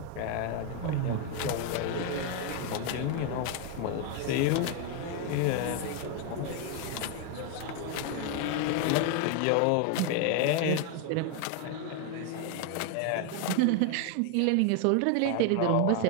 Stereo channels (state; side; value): different; both; correlation 0.01